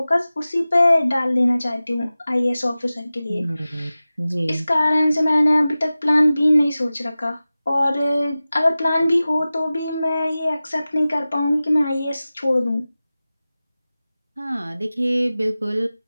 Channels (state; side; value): inverted; both; correlation -0.96